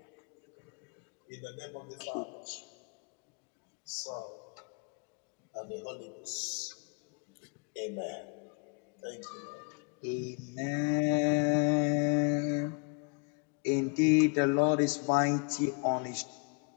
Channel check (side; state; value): right; quieter; 34.7 dB